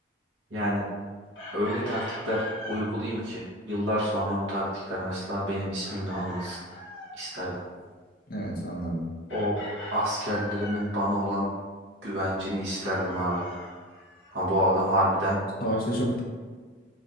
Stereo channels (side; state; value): both; normal; correlation 0.28